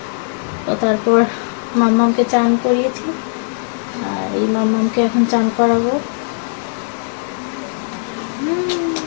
তো তারপর মাম্মামকে চান করিয়েছি, আর এই মাম্মামকে এখন চান করাবো।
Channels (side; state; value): right; silent; 60 dB below the other